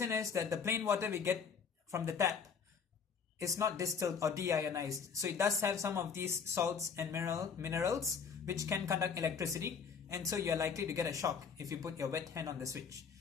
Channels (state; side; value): quieter; right; 6.2 dB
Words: is that the plain water we get from the tap is not distilled or deionized. So it does have some of these salts and minerals which can conduct electricity, and so you're likely to get a shock if you put your wet hand on the switch.